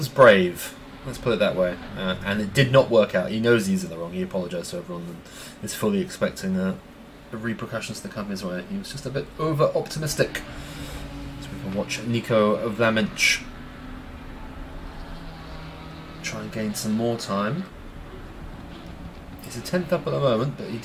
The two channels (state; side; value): identical; both; correlation 1.00